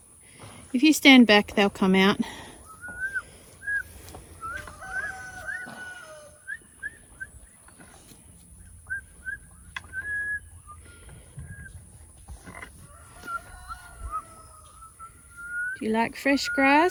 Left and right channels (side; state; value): both; identical; correlation 1.00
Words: If you stand back, they'll come out. Do you like fresh